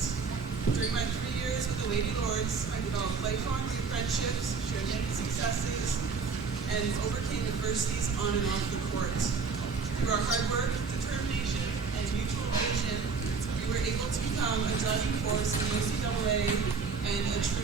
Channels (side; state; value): left; quieter; 5.0 dB